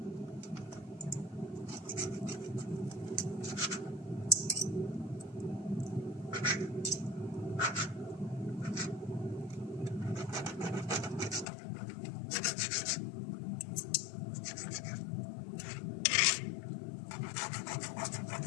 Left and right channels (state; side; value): drops out; right; at 11.5 s